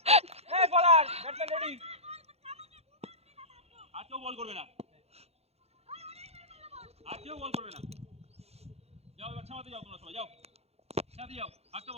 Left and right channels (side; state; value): left; late; 0.30 ms